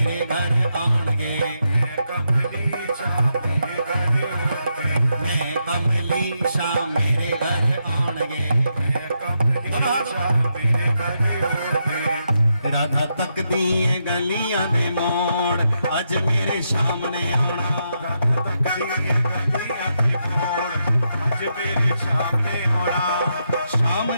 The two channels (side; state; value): both; inverted; correlation -0.82